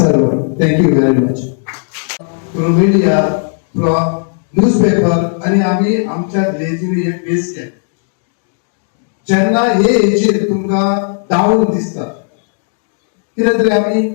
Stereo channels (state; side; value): silent; right; digital silence